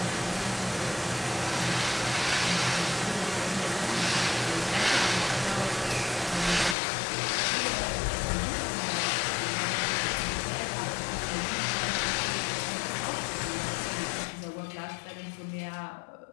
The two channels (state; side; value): drops out; right; at 6.8 s